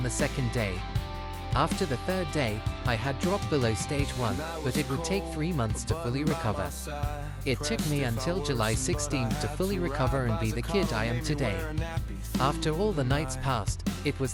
the second day. After the third day, I had dropped below stage 1, but it would take 3 months to fully recover. It took me until July 16th to fully recover and be the kid I am today. After all the nights passed, it was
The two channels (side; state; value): both; identical; correlation 1.00